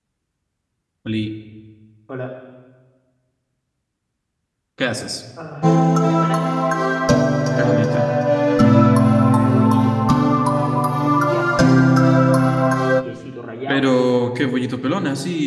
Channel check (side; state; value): both; identical; correlation 1.00